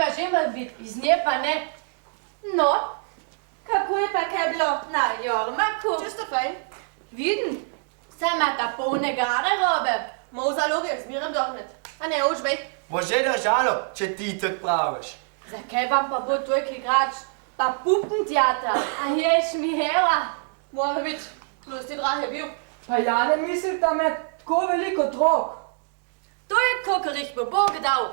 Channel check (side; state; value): left; silent; 57 dB below the other